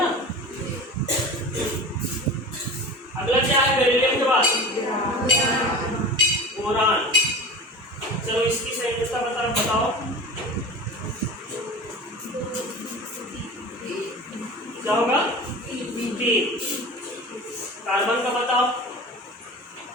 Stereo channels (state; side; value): normal; both; correlation 0.34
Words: अगला क्या है बेरिलियम के बाद? बोरान। चलो इसकी संयोजकता बताओ। क्या होगा? 3। कार्बन का बताओ।